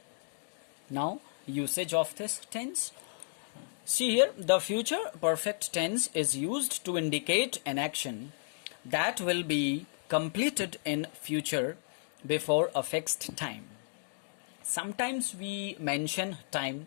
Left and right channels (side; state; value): right; silent; digital silence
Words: Now, usage of this tense. See here, the future perfect tense is used to indicate an action that will be completed in future before a fixed time. Sometimes we mention